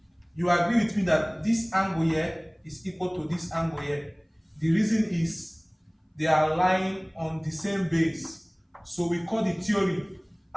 You agree with me that this angle here is equal to this angle here. The reason is they are lying on the same base. So we call the theory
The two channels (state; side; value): identical; both; correlation 1.00